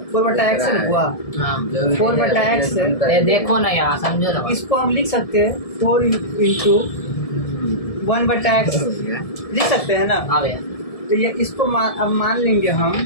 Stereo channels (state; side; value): late; right; 1.7 ms